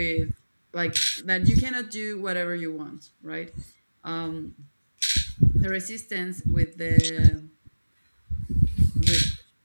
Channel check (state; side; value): inverted; both; correlation -1.00